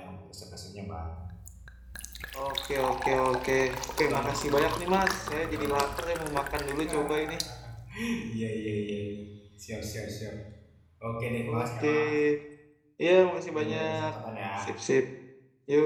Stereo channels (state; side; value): identical; both; correlation 1.00